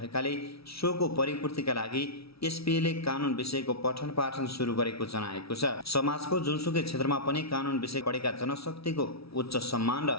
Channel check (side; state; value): right; late; 0.76 ms